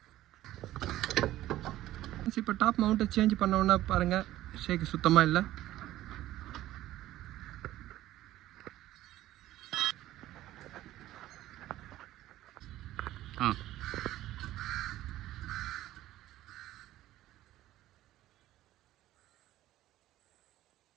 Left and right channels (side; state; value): left; quieter; 14.7 dB